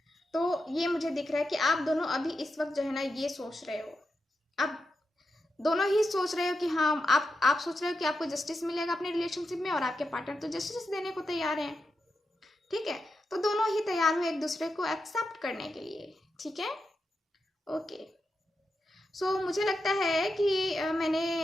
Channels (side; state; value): both; normal; correlation 0.88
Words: तो ये मुझे दिख रहा है कि आप दोनों अभी इस वक्त जो है ना ये सोच रहे हो, आप दोनों ही सोच रहे हो कि हाँ आप सोच रहे हो कि आपको जस्टिस मिलेगा अपने रिलेशनशिप में, और आपके पार्टनर तो जस्टिस देने को तैयार हैं, ठीक है। तो दोनों ही तैयार हो एक दूसरे को एक्सेप्ट करने के लिए, ठीक है। ओके, सो मुझे लगता है कि